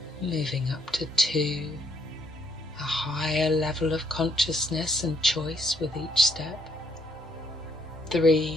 moving up to 2, a higher level of consciousness and choice with each step,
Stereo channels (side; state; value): both; normal; correlation 0.72